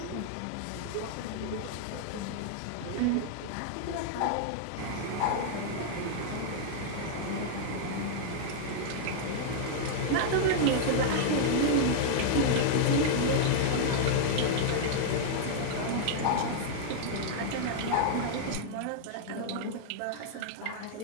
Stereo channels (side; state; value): both; different; correlation -0.01